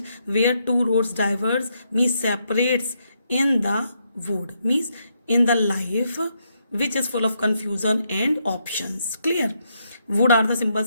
where two roads diverge, means separates in the wood, means in the life which is full of confusion and options. Clear? Wood are the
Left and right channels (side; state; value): both; inverted; correlation -0.78